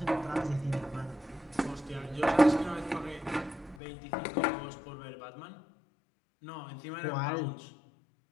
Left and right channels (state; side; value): drops out; right; at 3.8 s